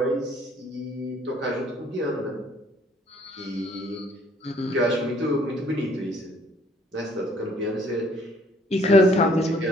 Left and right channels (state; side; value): normal; both; correlation 0.61